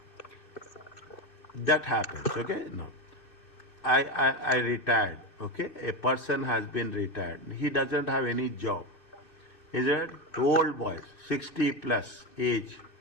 That happens, okay? No. I retired, okay? A person has been retired. He doesn't have any job. Is it? Old boys, 60 plus age.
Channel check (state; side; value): late; right; 2.6 ms